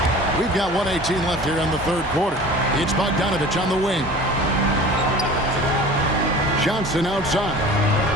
We've got 1:18 left here in the third quarter. It's Bogdanovich on the wing. Johnson outside.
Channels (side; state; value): both; normal; correlation 0.42